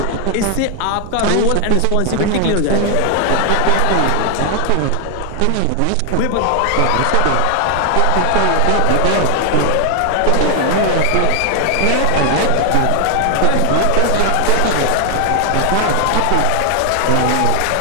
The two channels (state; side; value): different; both; correlation 0.00